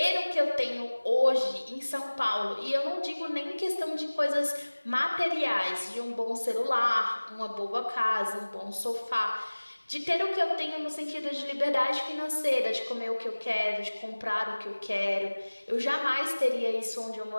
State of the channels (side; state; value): both; inverted; correlation -1.00